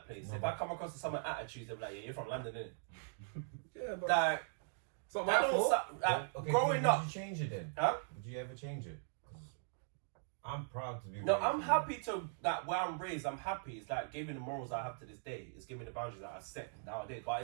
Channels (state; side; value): silent; left; digital silence